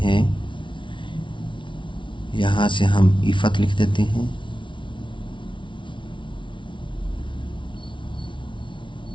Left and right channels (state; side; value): late; right; 0.24 ms